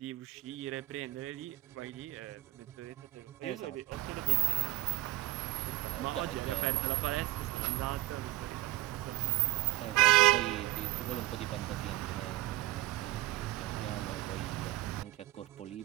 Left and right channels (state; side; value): quieter; left; 18.0 dB